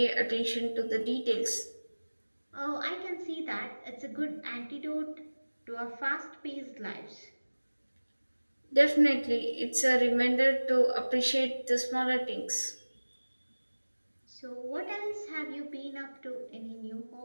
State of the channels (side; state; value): both; inverted; correlation -1.00